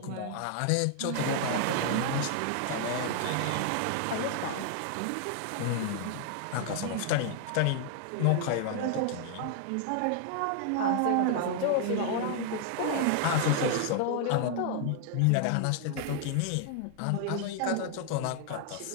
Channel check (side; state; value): both; different; correlation 0.00